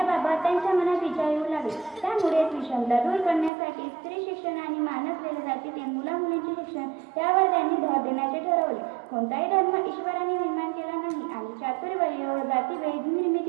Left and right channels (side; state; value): left; drops out; at 3.5 s